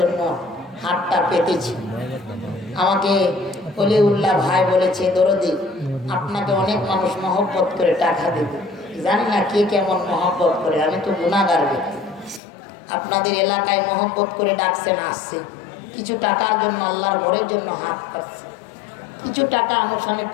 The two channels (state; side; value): drops out; right; at 12.4 s